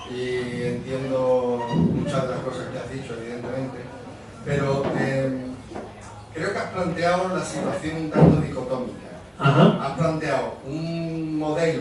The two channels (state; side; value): identical; both; correlation 1.00